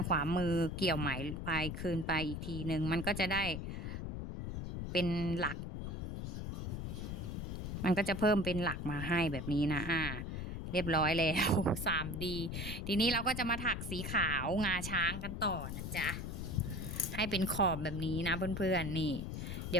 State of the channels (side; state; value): left; noise; rumble, 5 dB below the sound